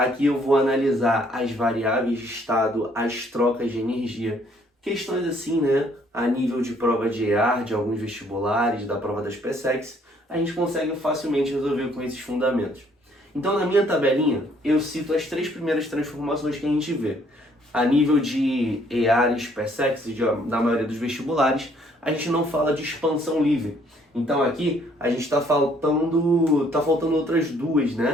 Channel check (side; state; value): both; normal; correlation 0.64